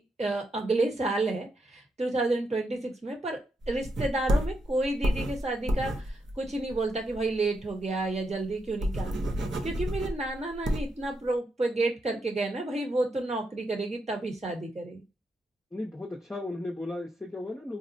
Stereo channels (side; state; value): both; normal; correlation 0.82